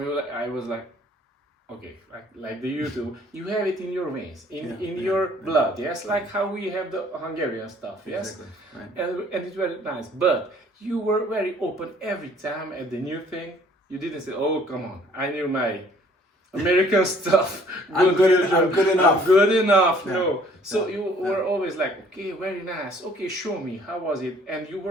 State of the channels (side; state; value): both; normal; correlation 0.58